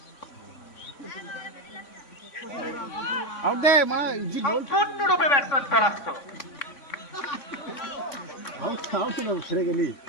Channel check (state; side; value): late; right; 3.5 ms